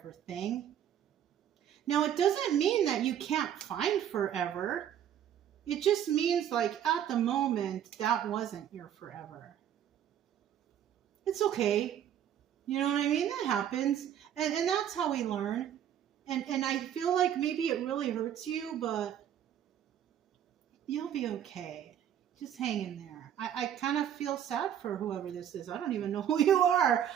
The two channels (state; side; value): quieter; left; 9.9 dB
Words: thing. Now, it doesn't mean that you can't find forever. It just means like at the moment, that wasn't your forever. It's okay. You know what I mean? That happens. And that's how we learn. And I feel like maybe it really hurts you, but you'll be okay. Just hang in there. I kind of feel sad for whoever this is. I don't even know who you are.